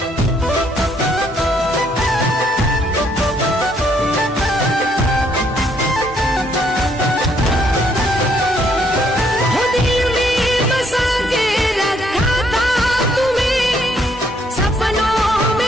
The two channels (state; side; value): normal; both; correlation 0.69